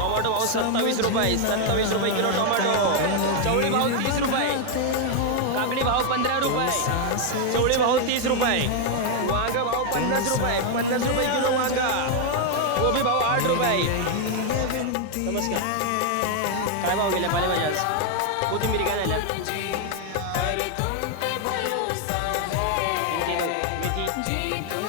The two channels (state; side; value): different; both; correlation 0.01